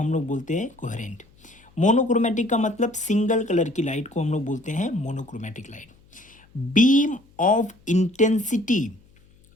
लोग बोलते हैं कोहेरेंट। मोनोक्रोमेटिक का मतलब सिंगल कलर की लाइट को हम लोग बोलते हैं monochromatic light. Beam of intensity,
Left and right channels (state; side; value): noise; left; hum, 30 dB below the sound